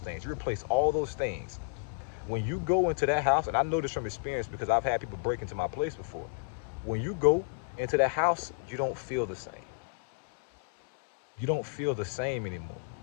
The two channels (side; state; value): right; silent; digital silence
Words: You replace all those things. When you go into that house, and I know this from experience because I've had people break into my place before. When you go into that house, you don't feel the same. You don't feel the same anymore.